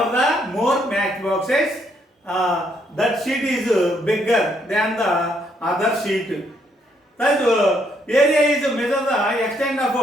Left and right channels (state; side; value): normal; both; correlation 0.72